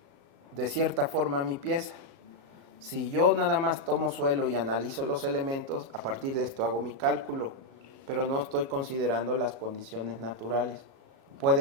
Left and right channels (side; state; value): left; late; 35 ms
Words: de cierta forma mi pieza. Si yo nada más tomo suelo y analizo los elementos, a partir de esto hago mi cálculo, pero no estoy considerando las condiciones naturales.